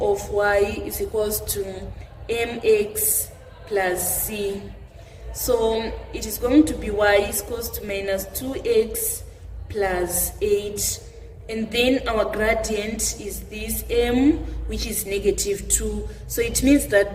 of y is equals to mx plus c. So it is going to be y is equals to minus 2x plus 8. And then our gradient is this m, which is negative 2. So it means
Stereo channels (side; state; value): both; identical; correlation 1.00